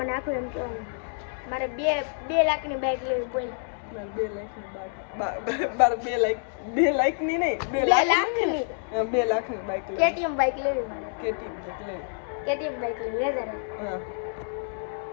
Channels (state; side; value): silent; right; digital silence